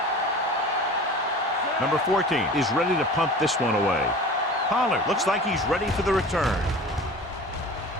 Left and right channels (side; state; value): both; normal; correlation 0.39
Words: Number 14 is ready to punt this one away. Pollard looks like he's ready for the return.